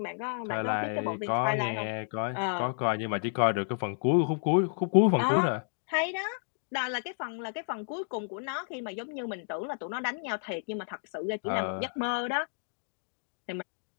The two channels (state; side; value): silent; right; digital silence